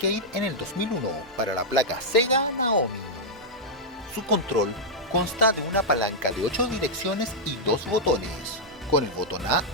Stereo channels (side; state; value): both; normal; correlation -0.06